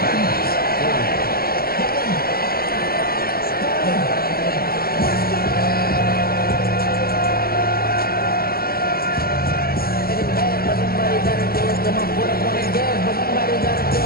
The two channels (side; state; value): right; late; 0.44 ms